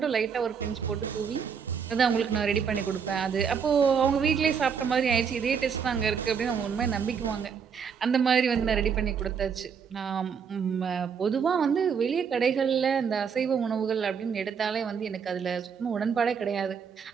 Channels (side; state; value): left; quieter; 6.7 dB